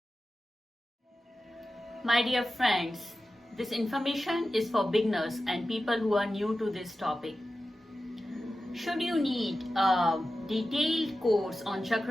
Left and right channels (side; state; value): both; normal; correlation 0.93